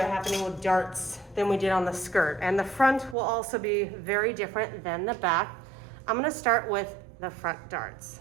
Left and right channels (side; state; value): left; drops out; at 3.2 s